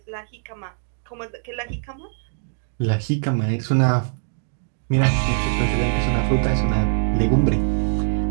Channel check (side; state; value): left; silent; digital silence